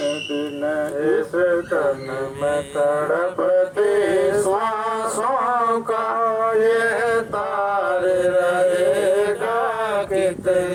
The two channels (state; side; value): identical; both; correlation 1.00